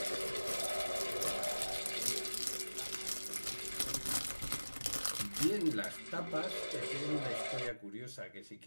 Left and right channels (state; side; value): inverted; both; correlation -1.00